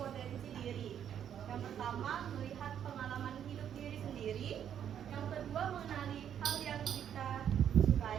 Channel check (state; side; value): quieter; left; 9.3 dB